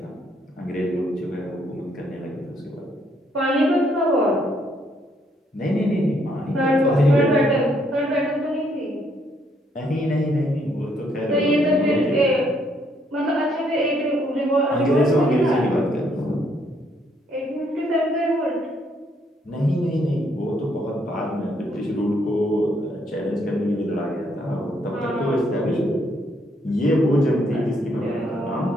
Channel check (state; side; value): normal; both; correlation 0.71